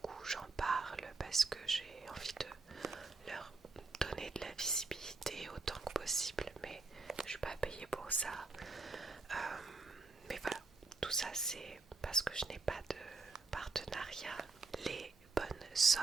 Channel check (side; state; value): left; quieter; 3.9 dB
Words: j'en parle parce que j'ai envie de leur donner de la visibilité autant que possible, mais je suis pas payée pour ça. Mais voilà, tout ça c'est parce que je n'ai pas de partenariat. Les bonnes